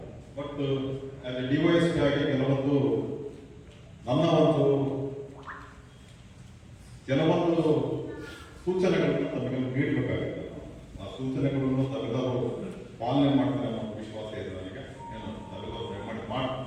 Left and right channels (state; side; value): identical; both; correlation 1.00